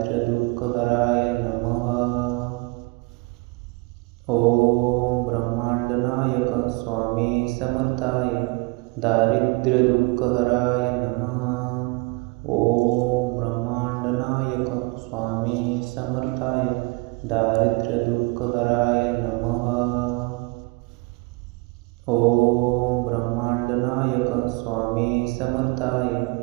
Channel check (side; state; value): left; quieter; 26.5 dB